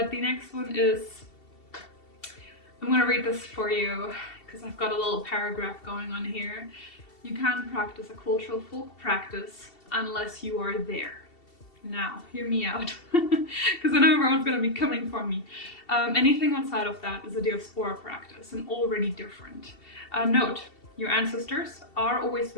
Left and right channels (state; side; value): late; right; 2.7 ms